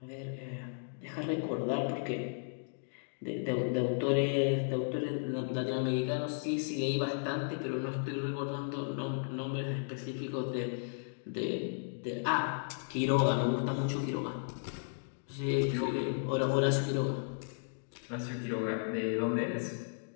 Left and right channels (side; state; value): right; silent; digital silence